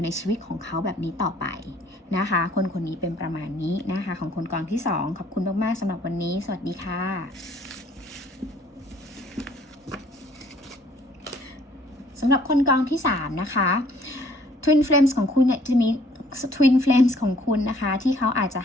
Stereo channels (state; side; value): normal; both; correlation 0.60